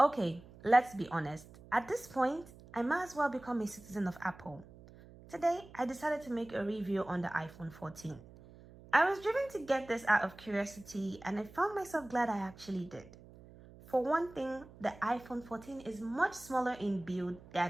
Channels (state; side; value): noise; right; hum, 20 dB below the sound